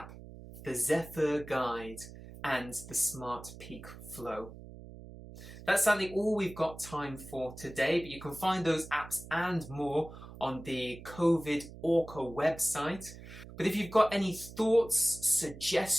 the Zephyr guide, and the Smart Peak Flow. That's sadly all we've got time for today, but you can find those apps and more on the COVID ORCHA website. But if you've got any thoughts,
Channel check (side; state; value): right; noise; hum, 15 dB below the sound